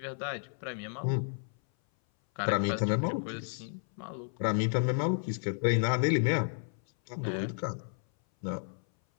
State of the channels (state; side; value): silent; right; 56 dB below the other